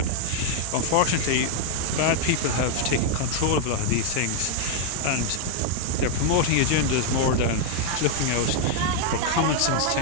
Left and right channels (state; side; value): different; both; correlation 0.00